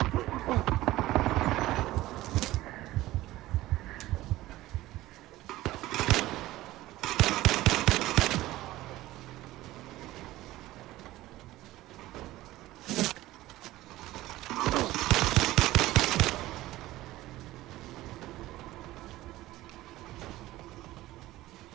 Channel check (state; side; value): quieter; left; 16.7 dB